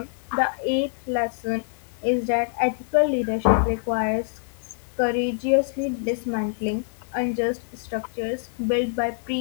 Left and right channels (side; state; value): right; silent; digital silence